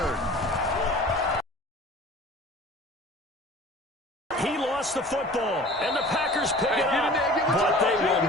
He lost the football, and the Packers pick it up. But they will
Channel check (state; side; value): normal; both; correlation 0.43